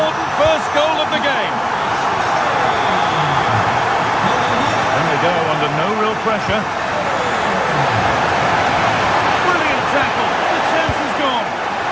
first goal of the game. And they go under no real pressure. Brilliant tackle. The chance is gone.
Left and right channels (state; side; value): identical; both; correlation 1.00